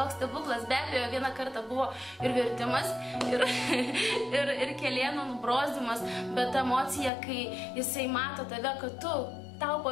stebuklas, be abejo, vieną kartą buvo ir vertimas, ir kelienų nubrozdimas, bet emocija, kai jisai mato tave, kad tau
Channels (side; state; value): right; drops out; at 7.1 s